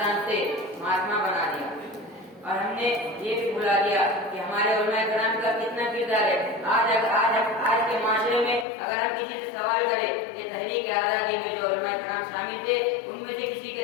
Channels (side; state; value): right; drops out; at 8.7 s